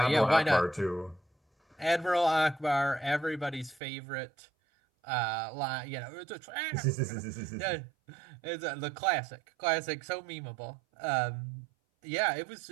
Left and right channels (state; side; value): drops out; left; at 3.8 s